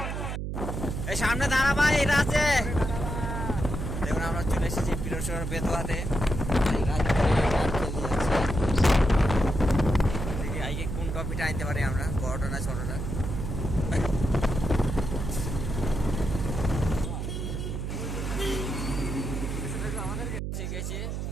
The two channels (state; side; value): noise; right; hum, 4 dB below the sound